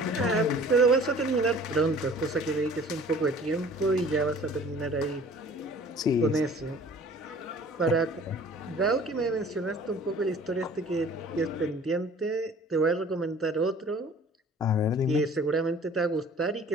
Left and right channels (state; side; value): normal; both; correlation 0.49